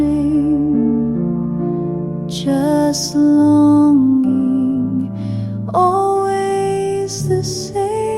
just longing, always the same.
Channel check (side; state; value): both; identical; correlation 1.00